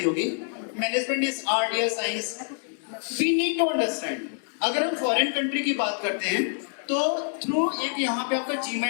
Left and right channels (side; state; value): right; silent; 61 dB below the other